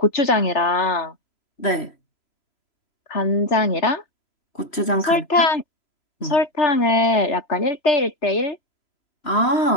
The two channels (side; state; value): right; late; 3.0 ms